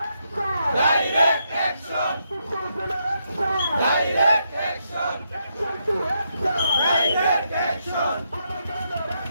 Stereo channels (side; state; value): both; inverted; correlation -0.80